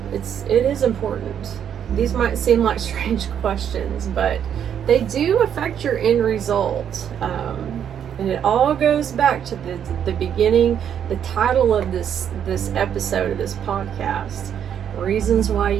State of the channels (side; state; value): left; quieter; 8.9 dB